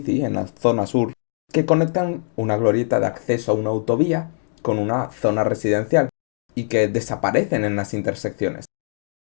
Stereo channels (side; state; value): right; silent; digital silence